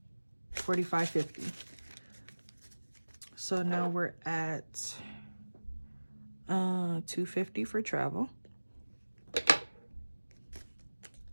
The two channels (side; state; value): both; inverted; correlation -1.00